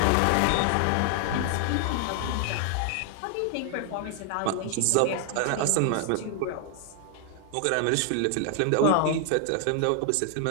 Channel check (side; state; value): both; different; correlation 0.00